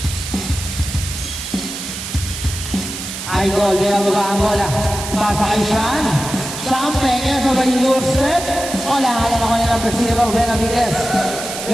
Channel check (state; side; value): noise; right; hiss, 8 dB below the sound